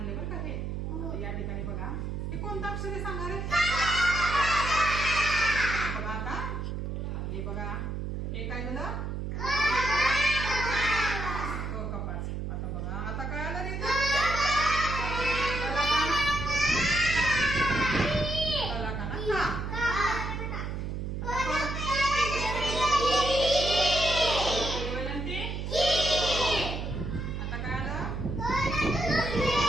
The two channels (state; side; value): noise; right; hum, 4 dB below the sound